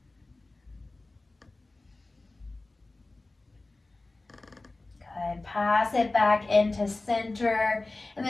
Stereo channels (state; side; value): quieter; right; 3.1 dB